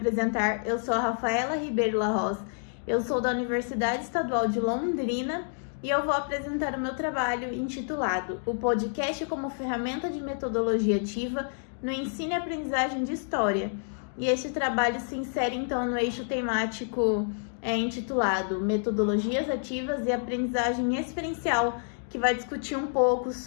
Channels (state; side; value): silent; right; digital silence